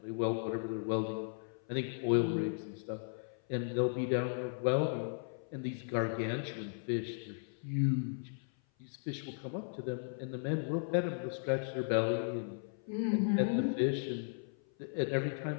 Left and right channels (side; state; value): right; silent; 54 dB below the other